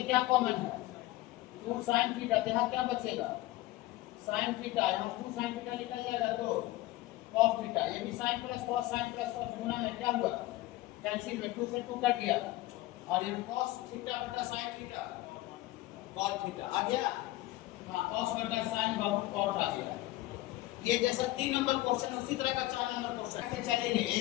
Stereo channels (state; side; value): quieter; right; 17.6 dB